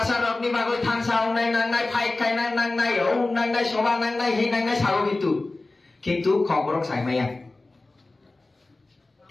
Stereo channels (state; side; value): quieter; right; 3.1 dB